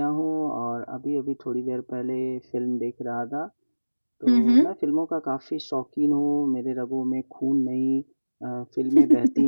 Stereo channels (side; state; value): both; inverted; correlation -1.00